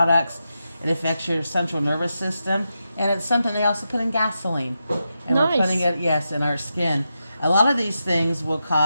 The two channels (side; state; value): both; inverted; correlation -0.88